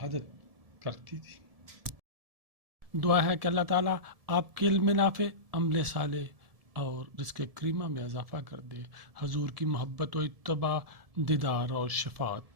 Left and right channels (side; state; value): left; late; 1.7 ms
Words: کرتی تھی۔ دعا ہے کہ اللہ تعالیٰ آپ کے علم نافع، عمل صالح اور رزق کریمہ میں اضافہ کر دے، حضور کی محبت و اتباع، دیدار اور